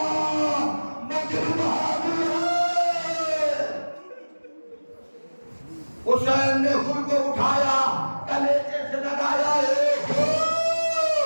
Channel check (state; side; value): inverted; both; correlation -1.00